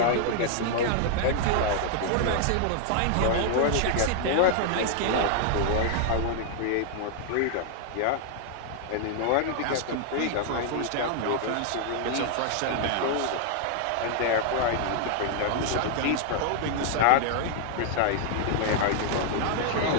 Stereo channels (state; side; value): different; both; correlation 0.00